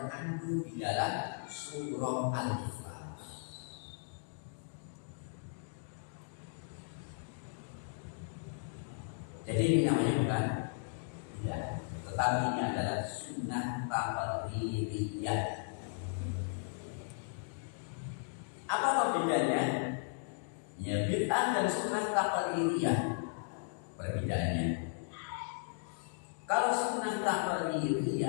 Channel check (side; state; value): right; silent; digital silence